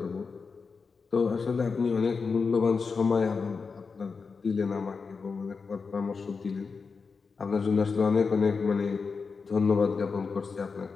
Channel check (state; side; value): quieter; right; 4.9 dB